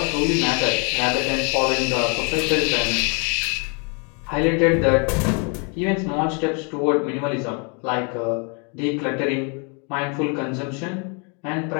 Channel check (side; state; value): right; quieter; 35.8 dB